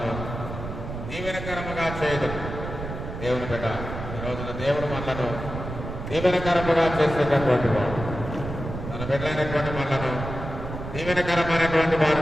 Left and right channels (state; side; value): noise; right; rumble, 8 dB below the sound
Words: దీవెనకరముగా చేయదు. దేవుని బిడ్డ, ఈ రోజున దేవుడు మనలను దీవెనకరముగా చేసేటటువంటి వాడు. తన బిడ్డలైనటువంటి మనలను దీవెనకరమైనటువంటి